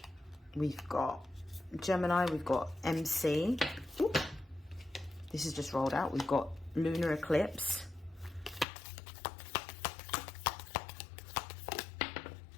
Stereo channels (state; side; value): drops out; right; at 8.7 s